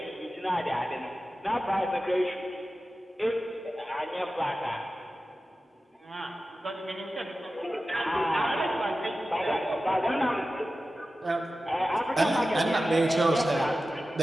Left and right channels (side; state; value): both; normal; correlation 0.94